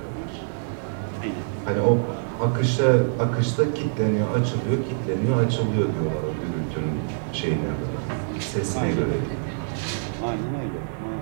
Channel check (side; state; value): left; silent; digital silence